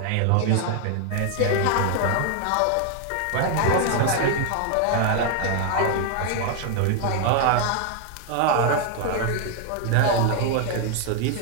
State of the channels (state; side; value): different; both; correlation 0.00